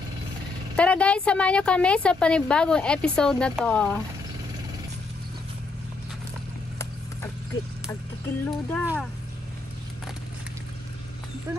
Tara guys, samahan nyo kami sa panibagong episode na to. Agkikilo da. Ito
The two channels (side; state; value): right; quieter; 3.7 dB